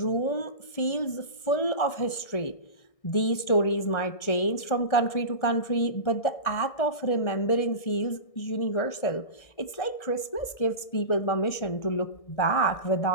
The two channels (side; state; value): right; late; 1.6 ms